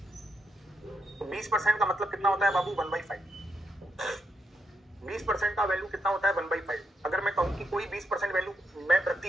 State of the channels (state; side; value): normal; both; correlation 0.81